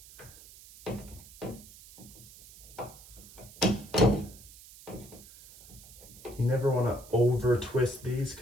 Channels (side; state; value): right; noise; hiss, 19 dB below the sound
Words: You never want to over twist these